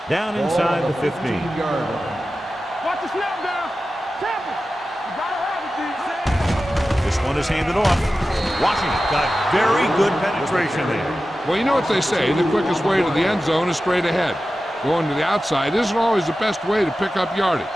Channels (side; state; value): both; normal; correlation 0.94